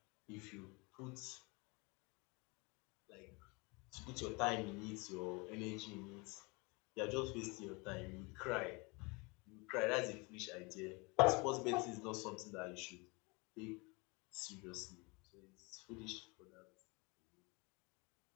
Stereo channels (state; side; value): quieter; right; 28.0 dB